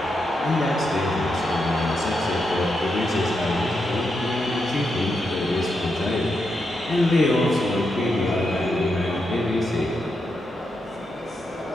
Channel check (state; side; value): normal; both; correlation 0.84